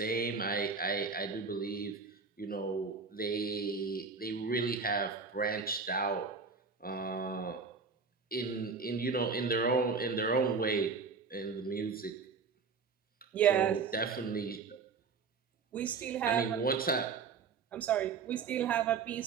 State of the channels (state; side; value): quieter; left; 5.0 dB